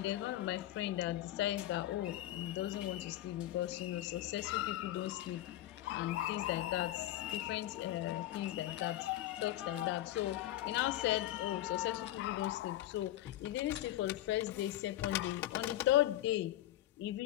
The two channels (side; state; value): right; quieter; 14.4 dB